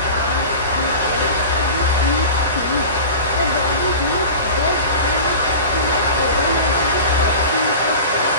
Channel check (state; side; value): inverted; both; correlation -0.34